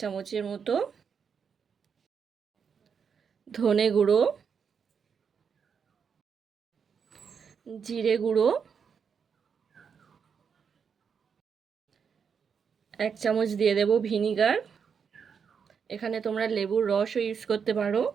চামচের মতো, ধনে গুঁড়ো, জিরে গুঁড়ো 1 চামচ দিয়ে দেব, ভিনিগার, এখানে তোমরা লেবুর রসও ইউজ করতে পারো,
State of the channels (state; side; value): quieter; left; 6.6 dB